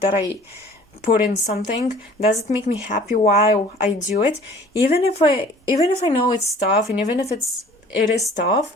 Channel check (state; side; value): normal; both; correlation 0.50